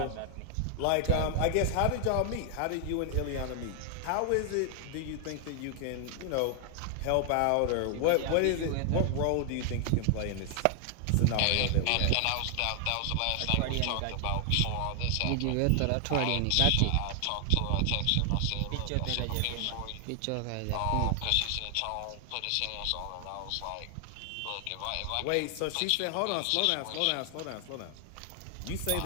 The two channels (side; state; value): both; different; correlation 0.00